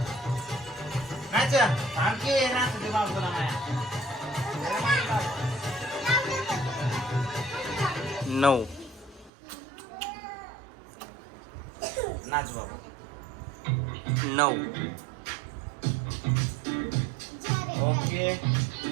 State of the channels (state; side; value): drops out; left; at 9.3 s